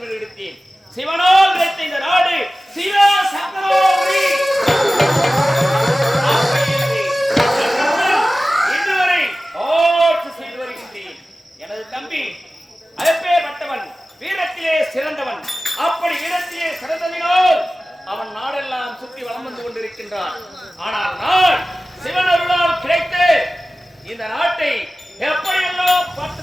என்று எடுத்தேன். சிவனால் கிடைத்த இந்த நாடு சிவ சக்கரவர்த்தி இன்று வரை ஆட்சி செய்து வருகின்றேன். எனது தம்பி அப்பேற்பட்டவன் வீரத்திலே சிறந்தவன். அப்படி வீரத்திலே சிறந்ததினால் அவன் நாடெல்லாம் சுற்றி வலம் வந்து கொண்டிருக்கின்றான். ஆனால் நான் சிவன் அருளால் கிடைத்து இந்த நாட்டை எப்படியெல்லாம்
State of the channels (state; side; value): normal; both; correlation 0.96